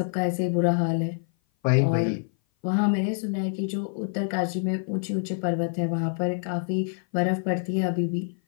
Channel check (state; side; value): silent; right; 56 dB below the other